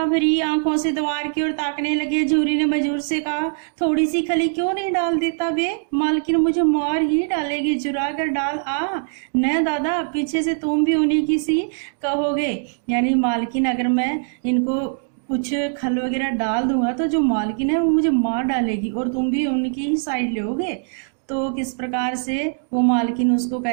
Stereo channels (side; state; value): left; silent; digital silence